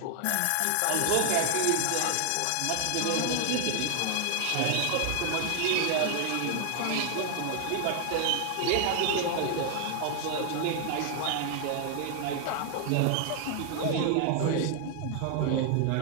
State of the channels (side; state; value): both; different; correlation 0.00